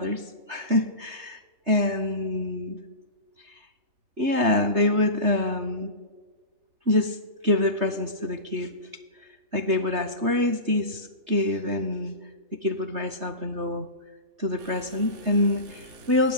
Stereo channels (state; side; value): late; left; 3.3 ms